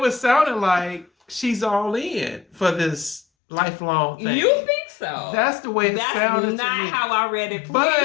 sounding like she's all in for this lifelong thing. You think so? That's the way it sounded to me. That's not how I read it. Please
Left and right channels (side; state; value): right; drops out; at 3.2 s